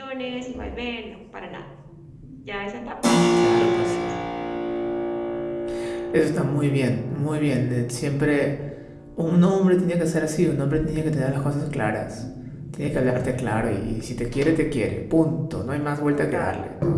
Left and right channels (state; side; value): identical; both; correlation 1.00